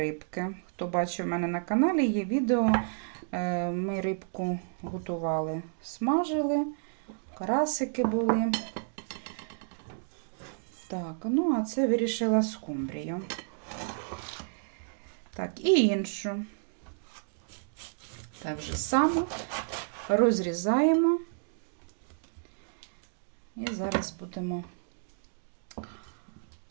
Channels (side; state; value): left; silent; digital silence